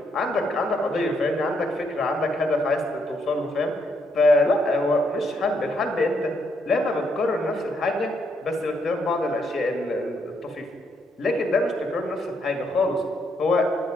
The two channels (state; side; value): normal; both; correlation 0.75